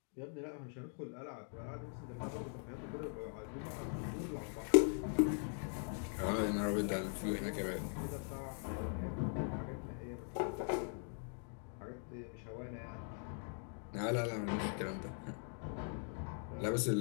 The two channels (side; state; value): right; silent; 50 dB below the other